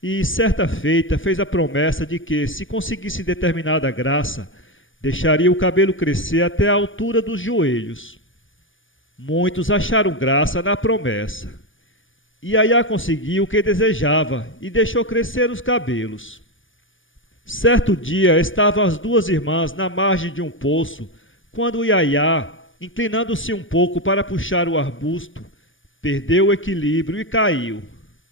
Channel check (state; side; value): late; right; 0.57 ms